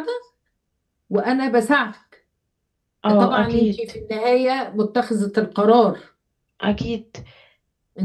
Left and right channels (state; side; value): identical; both; correlation 1.00